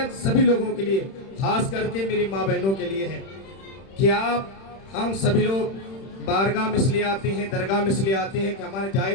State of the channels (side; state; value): right; late; 31 ms